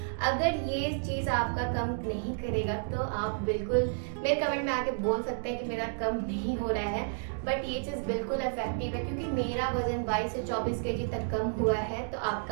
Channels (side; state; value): left; silent; digital silence